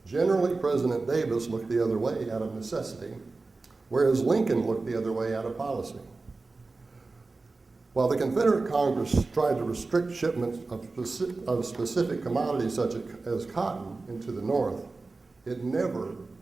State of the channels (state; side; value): quieter; left; 3.7 dB